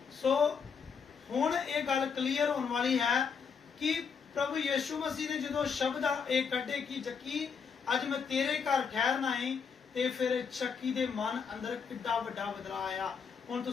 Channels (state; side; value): quieter; right; 6.1 dB